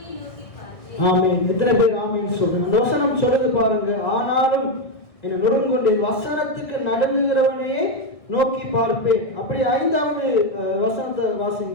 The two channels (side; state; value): right; late; 1.8 ms